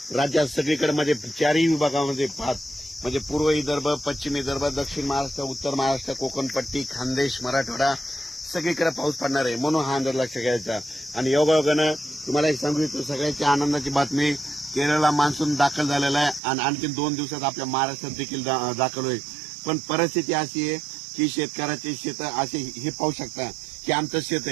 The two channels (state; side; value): drops out; left; at 16.4 s